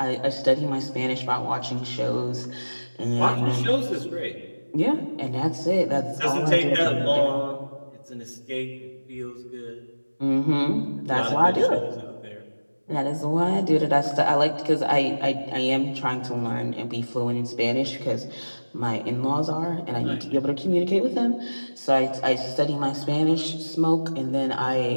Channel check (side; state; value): both; inverted; correlation -1.00